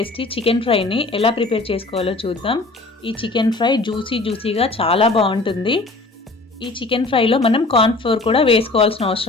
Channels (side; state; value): right; quieter; 3.3 dB